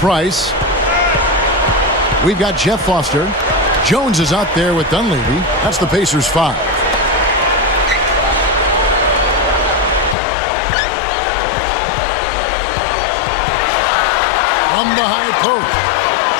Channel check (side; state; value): right; drops out; at 10.2 s